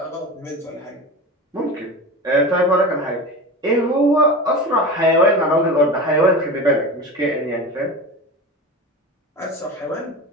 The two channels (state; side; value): normal; both; correlation 0.29